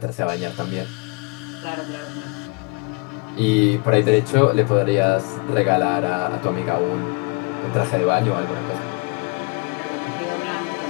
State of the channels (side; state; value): right; quieter; 32.0 dB